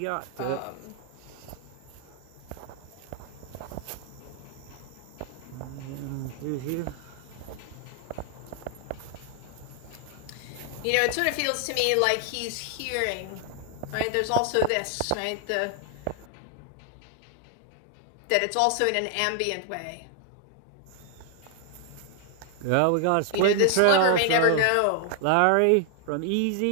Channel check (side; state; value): both; different; correlation 0.00